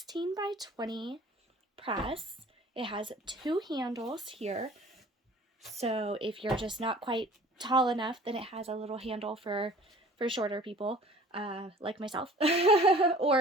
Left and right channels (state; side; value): normal; both; correlation 0.48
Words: by 20 press. It has two handles here. So if you're just not quite tall enough, then it has a little handle for shorter people, like myself.